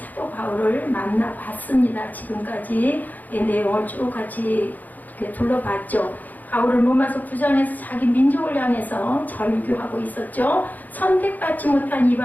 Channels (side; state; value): right; late; 0.082 ms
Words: 바울을 만나봤습니다. 지금까지 내용을 쭉 같이 둘러봤죠. 바울은 로마서 9장에서 자기 민족을 향해서 절규하고 있었죠. 선택받지 못한